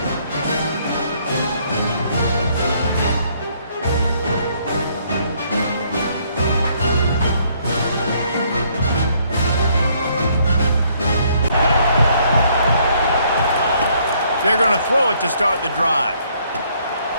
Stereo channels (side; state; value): both; inverted; correlation -0.67